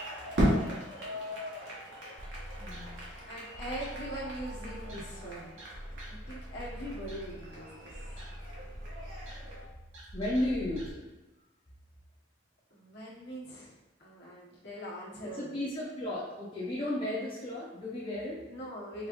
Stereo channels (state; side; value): normal; both; correlation 0.62